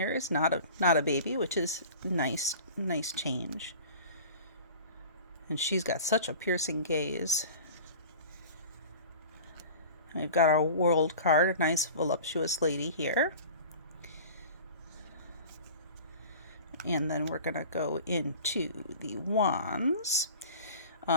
is not a baby, which is nice change. And she's got such a piercing gaze. We've got our world card, a nice voluptuous lady here. And then we're going to go into the wands.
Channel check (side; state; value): both; inverted; correlation -0.39